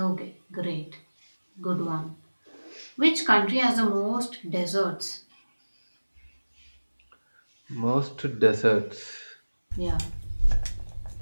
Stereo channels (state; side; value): inverted; both; correlation -1.00